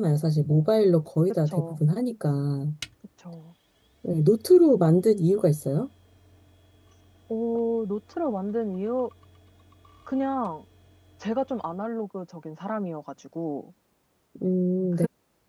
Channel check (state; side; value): identical; both; correlation 1.00